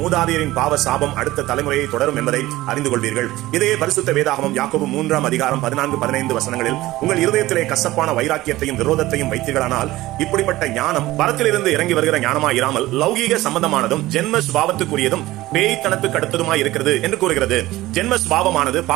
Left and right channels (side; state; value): left; quieter; 17.3 dB